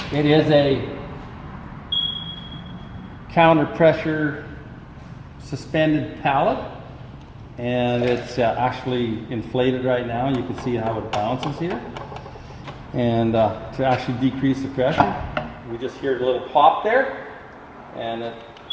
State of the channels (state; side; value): identical; both; correlation 1.00